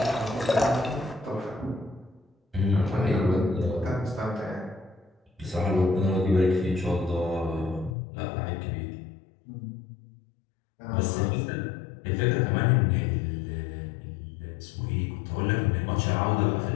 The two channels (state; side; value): drops out; right; at 7.9 s